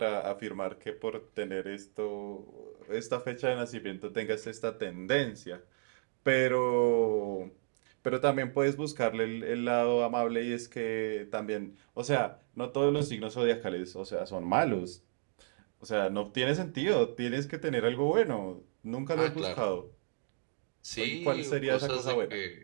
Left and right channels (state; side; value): silent; left; digital silence